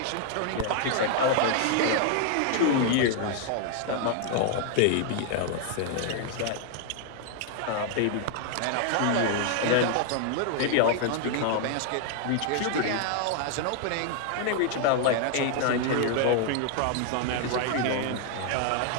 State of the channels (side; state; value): both; different; correlation 0.00